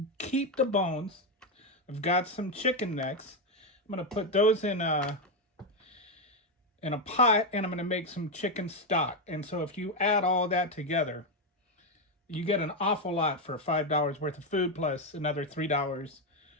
keep the bones. I've got some chicken necks. I'm gonna put those in a pot, and I'm gonna make some chicken stock. And so if you add all that together, you get an awful lot for $5 worth of food plus another $3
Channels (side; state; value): both; normal; correlation 0.06